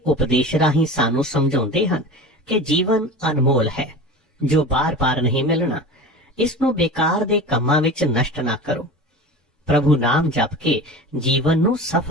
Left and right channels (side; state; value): both; normal; correlation 0.33